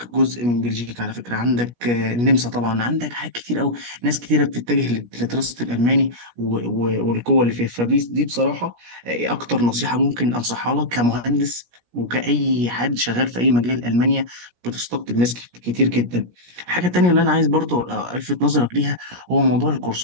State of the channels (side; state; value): left; late; 17 ms